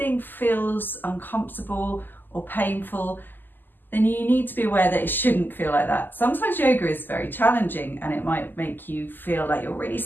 feels uncomfortable or painful, then you need to be aware that it shouldn't feel like that. Sometimes yoga is very challenging and it might make you feel like you're really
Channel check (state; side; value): late; right; 0.090 ms